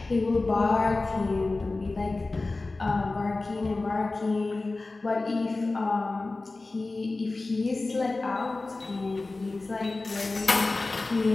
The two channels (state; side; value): quieter; right; 3.3 dB